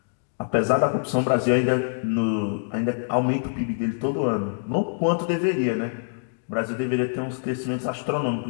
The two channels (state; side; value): silent; right; digital silence